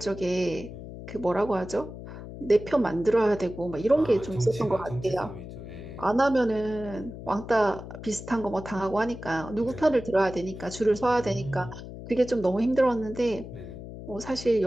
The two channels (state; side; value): noise; left; hum, 12 dB below the sound